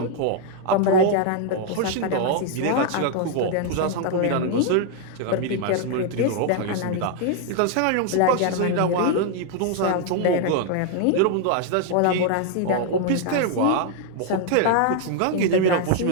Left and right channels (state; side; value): different; both; correlation 0.00